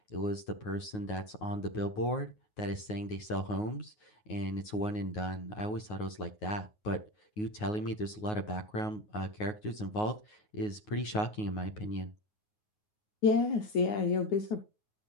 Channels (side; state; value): right; late; 9.5 ms